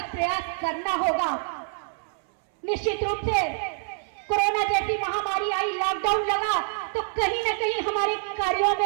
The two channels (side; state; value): left; silent; 61 dB below the other